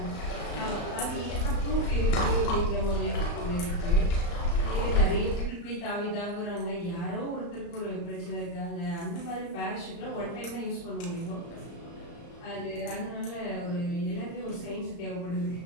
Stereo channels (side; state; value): right; late; 35 ms